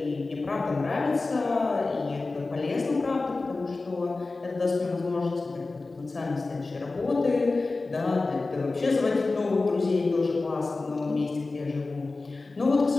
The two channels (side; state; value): right; quieter; 3.5 dB